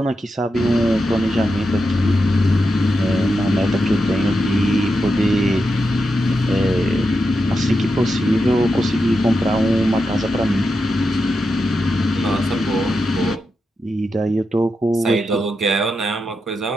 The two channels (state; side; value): normal; both; correlation 0.87